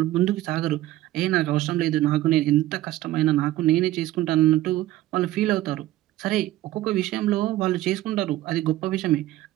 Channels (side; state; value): left; quieter; 15.3 dB